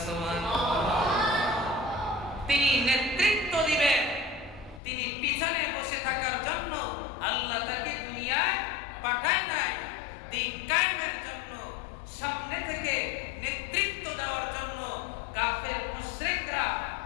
সুবহানাল্লাহ। তিনি নেতৃত্ব দিবেন, তিনি পিছনে বসে থাকার জন্য আল্লাহ তাকে দুনিয়ায় পাঠায় নাই, দিন কায়েমের জন্য, সামনে থেকে নেতৃত্ব দেওয়ার জন্য। কাফের মুশরিকরা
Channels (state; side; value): drops out; right; at 4.8 s